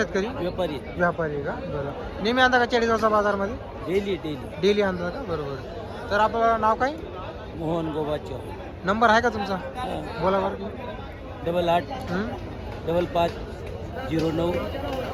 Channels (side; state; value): both; identical; correlation 1.00